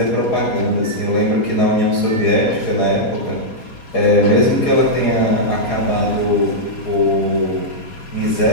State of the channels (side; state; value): right; late; 4.2 ms